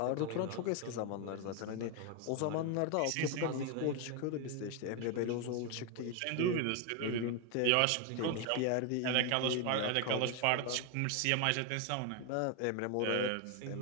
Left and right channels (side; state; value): both; different; correlation 0.01